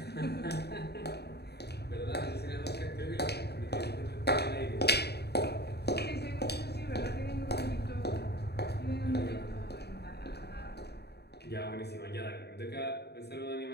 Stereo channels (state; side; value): late; right; 0.48 ms